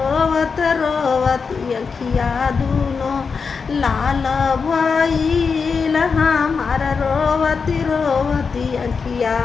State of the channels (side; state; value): right; quieter; 5.3 dB